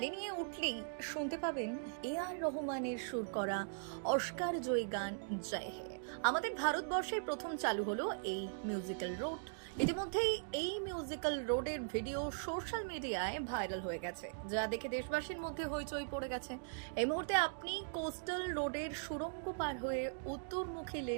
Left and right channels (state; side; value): silent; left; digital silence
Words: নিয়ে উঠলেই শুনতে পাবেন এআর রহমানের সুর করা অস্কার জয়ী গান জয় হে। আমাদের ভারতবর্ষে প্রথম চালু হলো এই মিউজিক্যাল রোড। ইতিমধ্যেই এই মিউজিক্যাল রোডের ভিডিও সোশ্যাল মিডিয়ায় ভাইরাল হয়ে গেছে, যা দেখে দেশবাসীর মধ্যে হইচই পড়ে গেছে। এই মুহূর্তে আপনি কোস্টাল রোডের সুড়ঙ্গ পার হয়ে উত্তরমুখী